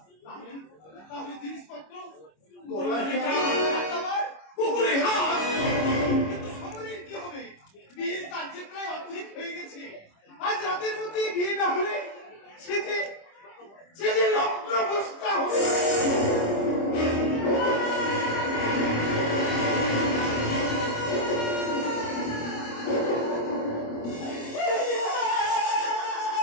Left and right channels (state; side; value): late; right; 25 ms